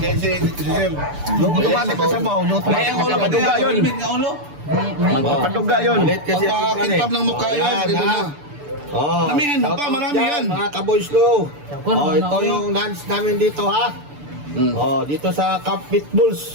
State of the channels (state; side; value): late; left; 6.9 ms